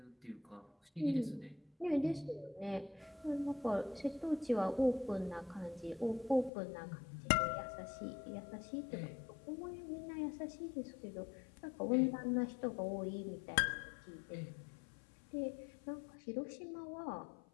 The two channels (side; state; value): right; drops out; at 6.5 s